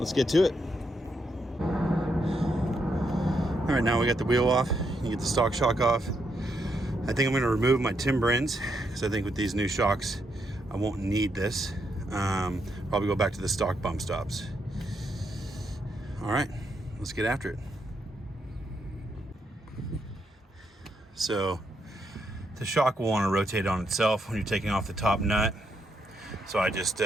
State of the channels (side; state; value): both; normal; correlation 0.79